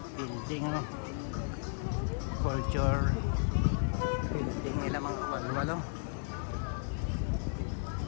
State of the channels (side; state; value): right; silent; digital silence